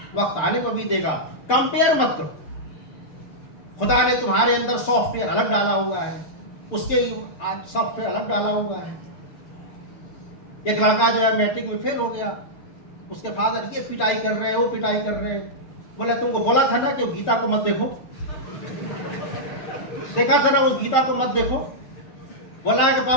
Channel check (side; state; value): right; late; 6.7 ms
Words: वक्त आने को भी देगा। कंपेयर मत करो। खुदा ने तुम्हारे अंदर सॉफ्टवेयर अलग डाला हुआ है, उसके सॉफ्टवेयर अलग डाला हुआ है। एक लड़का जो है मैट्रिक में फेल हो गया, उसके फादर ये पिटाई कर रहे हैं, वो पिटाई कर रहे हैं। बोला तुमको बोला था ना कि गीता को मत देखो, देखा था ना उस गीता को मत देखो। बोला है कि